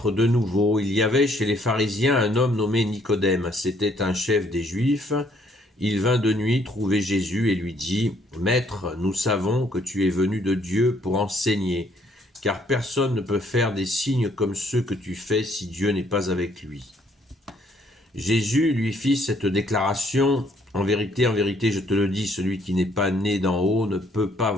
de nouveau. Il y avait chez les pharisiens un homme nommé Nicodème. C'était un chef des Juifs. Il vint de nuit trouver Jésus et lui dit : « Maître, nous savons que tu es venu de Dieu pour enseigner, car personne ne peut faire des signes comme ceux que tu fais si Dieu n'est pas avec lui. » Jésus lui fit cette déclaration : « En vérité, je te le dis, celui qui n'est pas né d'en haut ne peut pas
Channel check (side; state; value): both; normal; correlation 0.66